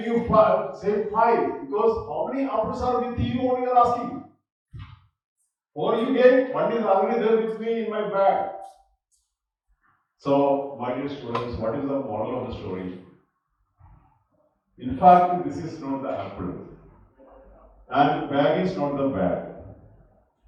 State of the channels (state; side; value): identical; both; correlation 1.00